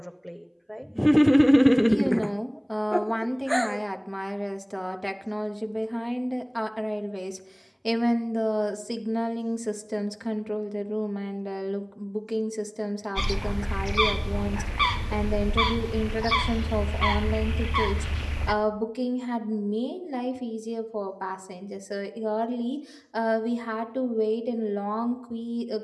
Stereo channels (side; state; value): both; identical; correlation 1.00